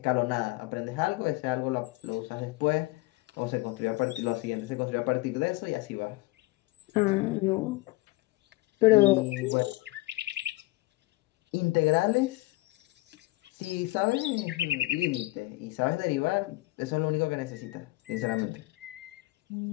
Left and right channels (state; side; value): quieter; right; 21.0 dB